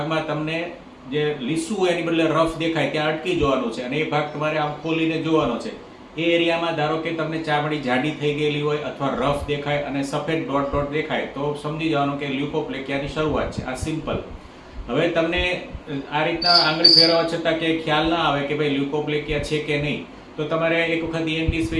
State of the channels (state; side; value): identical; both; correlation 1.00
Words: તમને જે લીસું હોય એની બદલે રફ દેખાય ત્યાં અટકી જવાનું છે અને એ ભાગ તમારે આમ ખોલીને જોવાનો છે. એ એરિયામાં ધારો કે તમને ચામડી જાડી થઈ ગયેલી હોય અથવા રફ દેખાય અને સફેદ ડોટ ડોટ દેખાય તો સમજી જવાનું કે લ્યુકોપ્લેકિયાની શરૂઆત છે. આ સિમ્પલ. હવે તમને આ રીતના આંગળી ફેરવવા છતાં કે ખ્યાલ ના આવે કે ભાઈ લ્યુકોપ્લેકિયા છે કે નહીં, તો તમારે એક વખત ENT